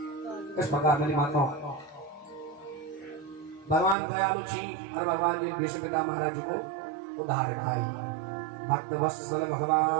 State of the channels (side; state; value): left; drops out; at 4.0 s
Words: इस प्रकार मेरी माताओं भगवान दयालु छी और भगवान ने भीष्म पिता महाराज को उद्धार खाई भक्त वत्सल